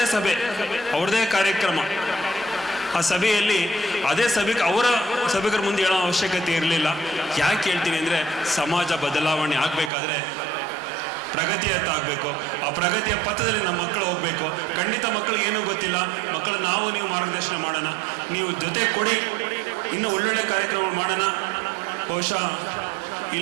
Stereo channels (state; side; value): drops out; left; at 9.9 s